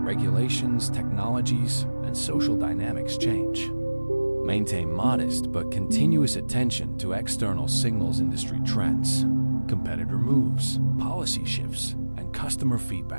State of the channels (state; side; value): inverted; both; correlation -1.00